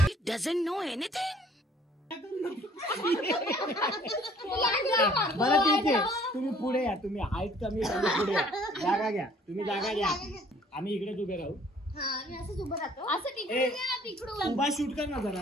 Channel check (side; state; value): both; normal; correlation 0.57